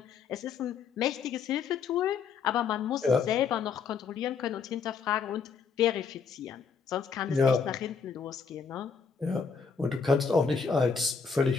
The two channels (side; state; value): right; quieter; 5.7 dB